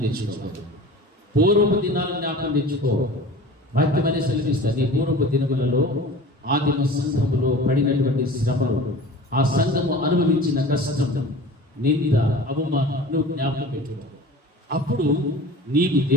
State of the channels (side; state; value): both; normal; correlation 0.39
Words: తెచ్చుకోవాలి. పూర్వపు దినాలను జ్ఞాపకం తెచ్చుకో. వాక్యం అనే సెలవిస్తుంది. పూర్వపు దినములలో ఆదిమ సంఘములో పడినటువంటి శ్రమలు, ఆ సంఘము అనుభవించిన కష్టం, నింద, అవమానం నువ్వు జ్ఞాపకం పెట్టుకో. అప్పుడు నీకు